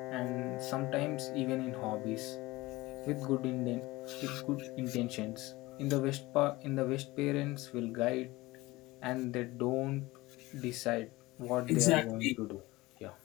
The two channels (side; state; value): right; quieter; 20.2 dB